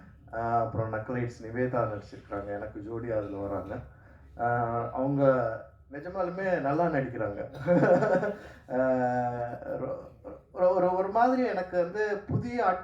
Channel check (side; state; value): both; identical; correlation 1.00